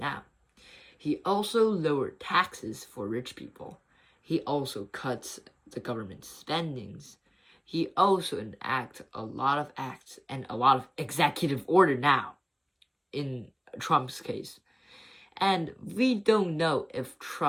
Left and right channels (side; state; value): both; identical; correlation 1.00